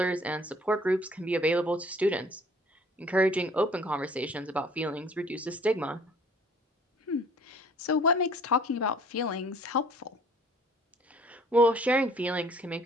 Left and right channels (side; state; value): both; normal; correlation 0.54